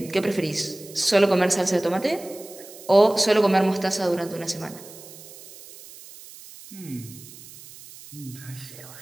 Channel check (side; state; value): right; noise; hiss, 18 dB below the sound